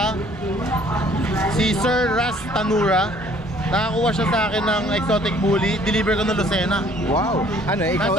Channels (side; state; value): both; normal; correlation 0.58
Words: si Sir Ras Tanura. Nakakuha siya sa akin ng exotic bully. Deliver ko ng Lucena. Wow. Ano, ikaw